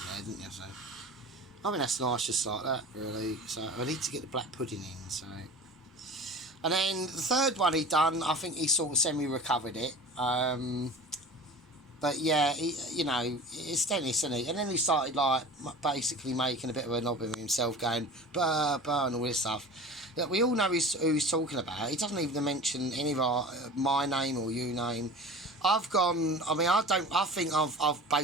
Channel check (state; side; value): normal; both; correlation 0.37